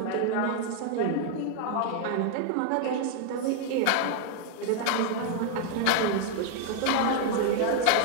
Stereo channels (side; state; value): both; different; correlation 0.00